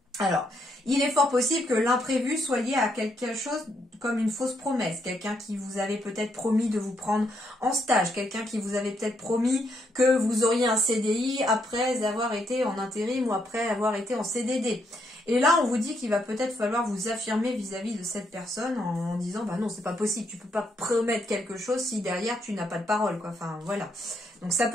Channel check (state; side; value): normal; both; correlation 0.76